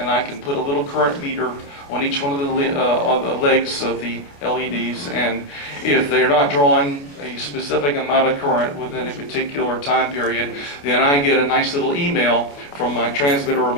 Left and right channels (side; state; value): right; late; 28 ms